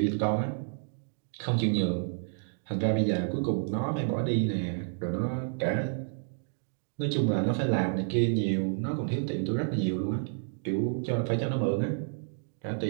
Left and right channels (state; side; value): silent; left; digital silence